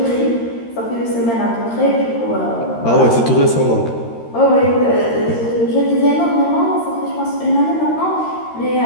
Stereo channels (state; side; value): late; right; 13 ms